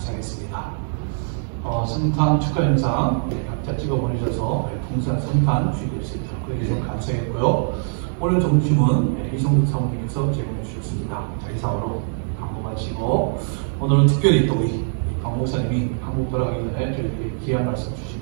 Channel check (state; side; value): silent; left; digital silence